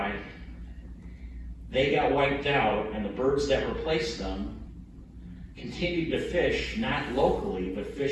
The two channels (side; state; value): both; identical; correlation 1.00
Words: they got wiped out, and the birds that replaced them continued to fish, not locally, but